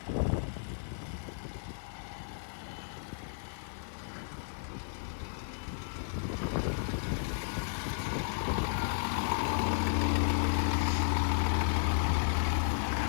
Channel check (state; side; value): silent; right; digital silence